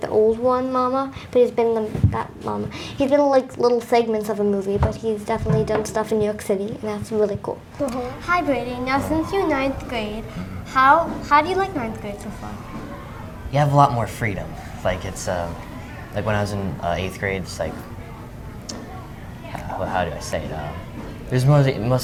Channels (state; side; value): identical; both; correlation 1.00